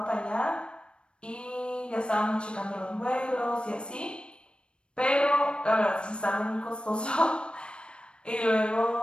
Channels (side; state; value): right; late; 0.056 ms